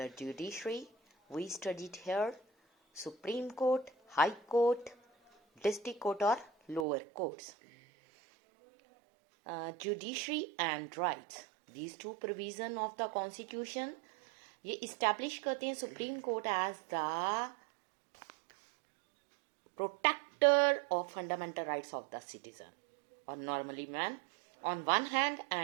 Judiciary, we studied here Supreme Court, High Court, District Court or lower courts. Judiciary and rights. These two provisions of the Constitution ये इस्टेब्लिश करते हैं supreme court as the protector of fundamental rights of the citizen और normally man on one hand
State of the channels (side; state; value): left; drops out; at 6.9 s